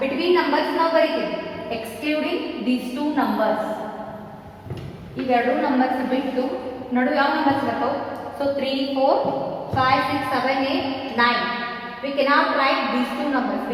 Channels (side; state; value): both; identical; correlation 1.00